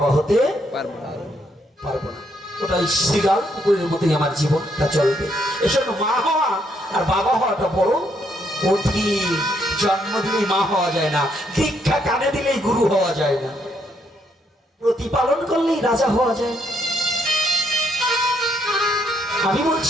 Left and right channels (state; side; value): normal; both; correlation 0.74